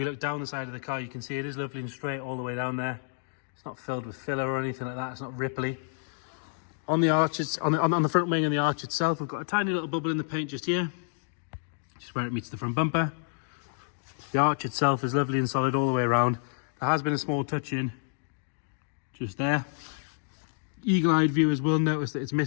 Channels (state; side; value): silent; right; digital silence